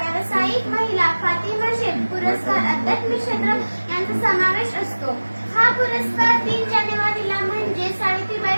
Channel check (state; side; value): inverted; both; correlation -1.00